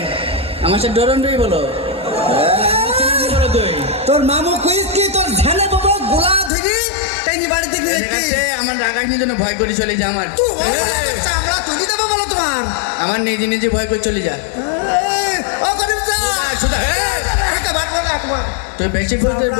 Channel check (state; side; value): drops out; right; at 6.5 s